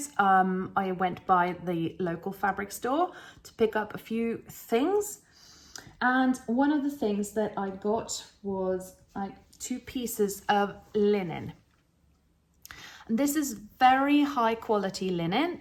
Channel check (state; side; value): identical; both; correlation 1.00